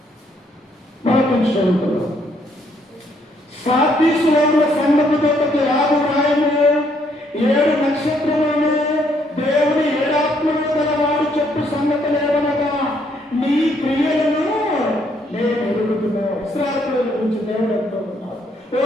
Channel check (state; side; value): normal; both; correlation 0.70